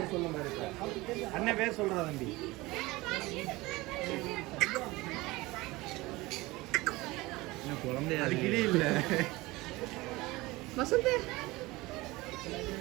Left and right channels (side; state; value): left; quieter; 21.0 dB